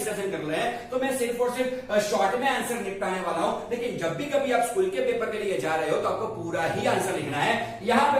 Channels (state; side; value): identical; both; correlation 1.00